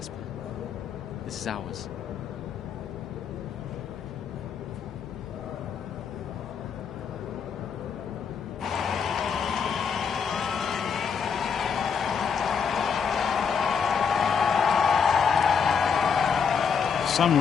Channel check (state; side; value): quieter; right; 6.4 dB